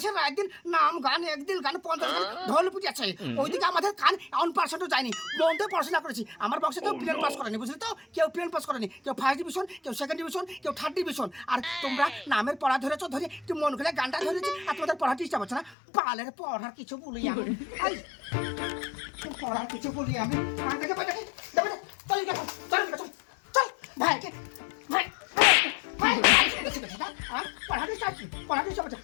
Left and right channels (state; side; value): drops out; right; at 15.8 s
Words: একদিন নাম গান একদিন গান 50 গান ঢোল পিটিয়েছে, ওইদিকে আমাদের কান 1% যায়নি, মন দিয়ে পড়াশোনা করেছি। আমার বংশে কেউ প্লেন পাস করেনি বুঝলি তো, কেউ প্লেন পাস করেনি, কেউ ফার্স্ট ডিভিশন কেউ সেকেন্ড ডিভিশন কেউ থার্ড ডিভিশন, আর তোমরা নামের পড়া ধরেছ ধরে তুই মন খুলে গানটা ধরেছি আর তোমাদের পড়া ডিস্টার্ব হচ্ছে না। পালের পড়ার কিছু বলি আমি এই পড়ার কিছু বলি আমি দেখে চল চল চল ভাইকে ভাই ভাই পড়াতে চাচ্ছি পড়াতে চাচ্ছি